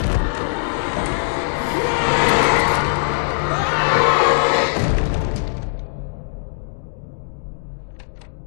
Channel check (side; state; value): right; silent; digital silence